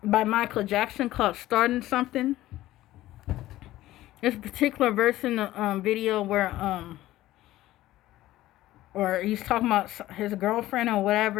by Michael Jackson called Starting Something. This particular verse in the video where or he's talking about his girlfriend or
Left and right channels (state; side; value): quieter; right; 15.5 dB